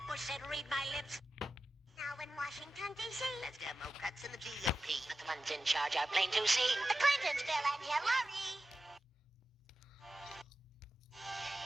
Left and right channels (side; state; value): both; normal; correlation 0.93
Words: Bush said, read my lips. Now in Washington, D.C., let's Democrats in the GOP. But the ones in charge are plain to see. The Clintons, Bill and Hillary.